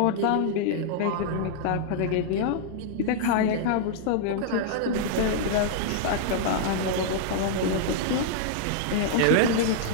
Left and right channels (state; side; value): different; both; correlation -0.01